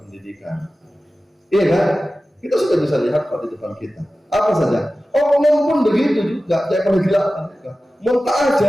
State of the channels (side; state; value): both; normal; correlation 0.95